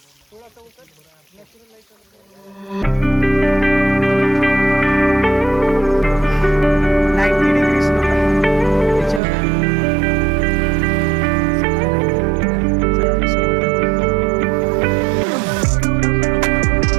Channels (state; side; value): drops out; left; at 9.2 s